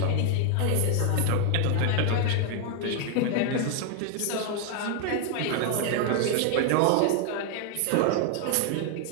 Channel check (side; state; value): both; different; correlation 0.00